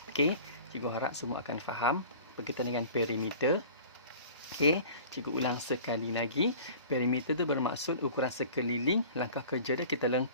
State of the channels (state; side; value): inverted; both; correlation -0.43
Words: Okey, cikgu harap semua akan faham berkaitan dengan perimeter. Okey, cikgu ulang sekali lagi. Perimeter tu bermaksud ukuran sekeliling. Langkah kerja dia, kita